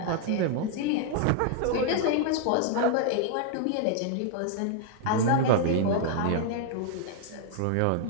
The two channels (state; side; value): different; both; correlation -0.01